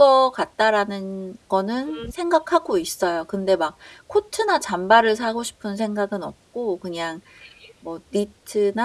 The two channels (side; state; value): both; identical; correlation 1.00